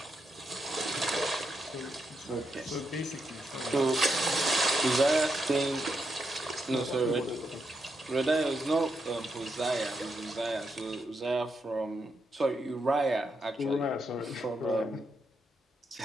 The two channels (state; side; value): normal; both; correlation 0.83